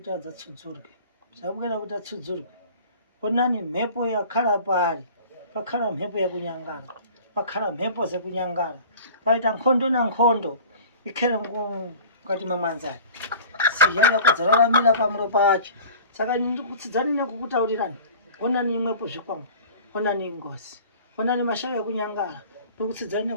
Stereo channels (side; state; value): both; inverted; correlation -0.42